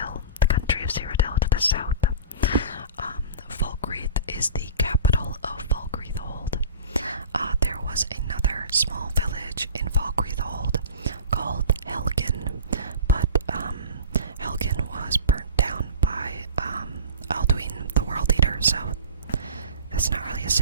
the country of Cyrodiil, to the south. Valkyrie is the capital of Valkyrie Old. There was another small village in Valkyrie Old called Helgen, but Helgen was burnt down by Alduin, the World Eater, so that's not really a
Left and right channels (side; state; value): both; inverted; correlation -0.36